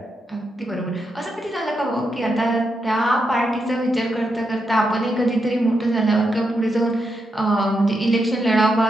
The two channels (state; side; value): normal; both; correlation 0.84